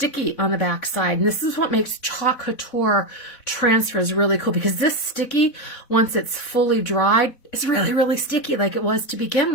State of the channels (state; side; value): late; right; 4.0 ms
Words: on the back side, and this is what makes Chalk Couture transfers really cool, because this sticky, once it's fully dried, is really, really sticky like it was to begin